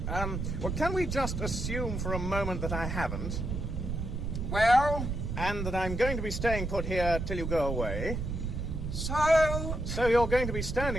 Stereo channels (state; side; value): noise; right; rumble, 3 dB below the sound